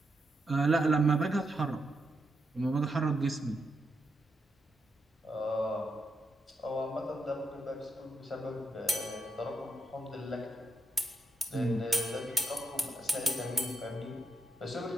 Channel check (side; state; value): both; normal; correlation 0.82